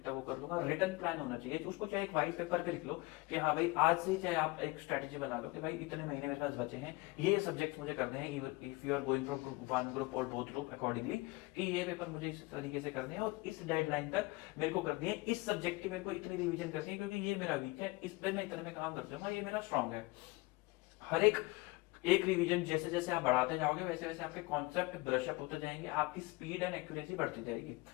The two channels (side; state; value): right; quieter; 22.6 dB